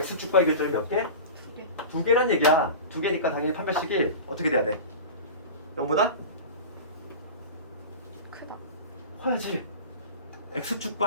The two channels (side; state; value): both; inverted; correlation -0.32